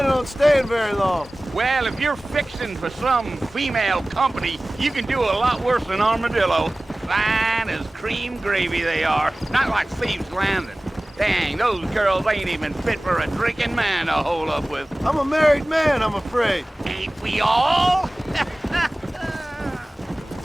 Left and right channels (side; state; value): both; normal; correlation 0.98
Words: on staying very long. Well, if you're fixing for some female company, you can do a lot worse than Armadillo. Fine as cream gravy they are, not like Thieves' Landing. Dang, those girls ain't even fit for a drinking man to hole up with. I'm a married man, I'm afraid. Ain't we all?